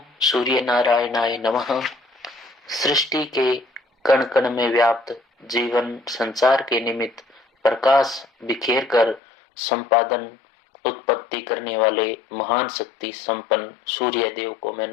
सूर्य नारायणाय नमः सृष्टि के कण कण में व्याप्त जीवन संचार के निमित्त प्रकाश बिखेर कर संपादन उत्पत्ति करने वाले महान शक्ति संपन्न सूर्य देव को मैं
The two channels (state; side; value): drops out; right; at 9.2 s